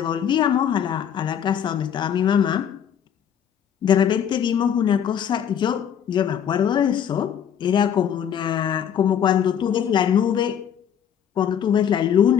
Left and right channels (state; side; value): quieter; right; 8.8 dB